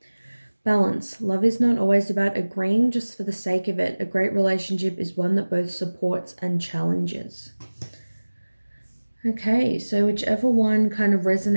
Balance. Love is not always about agreeing just for the sake of it. A great relationship is one that both supports and challenges. Okay, so whichever one kind of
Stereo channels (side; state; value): both; inverted; correlation -1.00